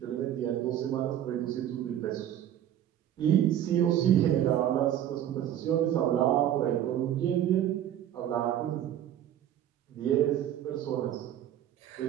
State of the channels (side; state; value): left; quieter; 11.2 dB